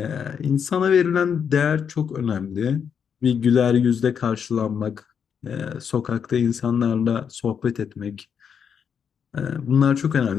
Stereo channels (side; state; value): right; quieter; 7.3 dB